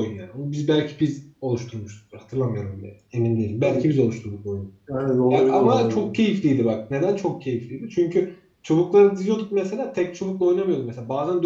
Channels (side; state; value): both; identical; correlation 1.00